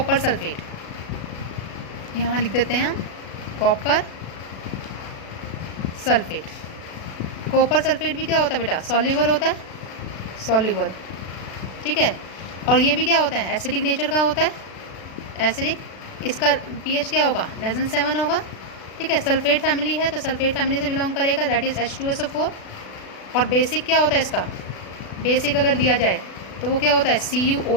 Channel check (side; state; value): right; late; 36 ms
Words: सल्फेट। यहाँ लिख देते हैं हम कॉपर सल्फेट। कॉपर सल्फेट भी क्या होता है बेटा, सॉल्युबल होता है, सॉल्युबल, ठीक है। और ये भी क्या होता है, एसिडिक नेचर का होता है, एसिडिक। इसका pH क्या होगा, <7 होगा, ठीक है। सल्फेट फैमिली है तो सल्फेट फैमिली से बिलोंग करेगा, दैट इज़ H2SO4। और बेसिक क्या होता है इसका, बेसिक अगर दिया जाए तो वो क्या होता है,